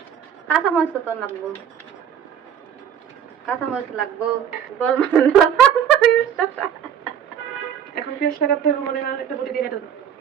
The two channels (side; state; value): left; quieter; 8.9 dB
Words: কাঁচা মরিচ তো লাগবো, কাঁচা মরিচ লাগবো। বল এখন পেঁয়াজ লাগাতে হবে, মনে না একটা বটি দিয়ে কেটে দাও।